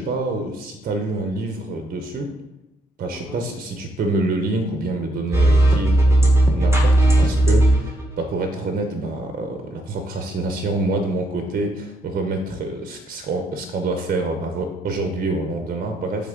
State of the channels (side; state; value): both; normal; correlation 0.74